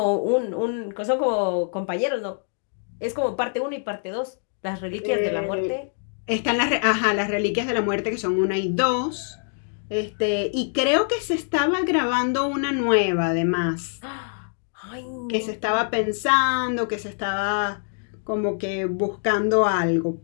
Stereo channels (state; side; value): silent; right; 62 dB below the other